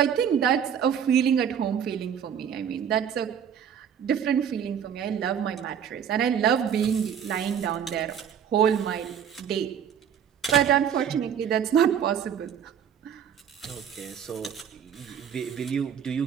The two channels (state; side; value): quieter; left; 8.5 dB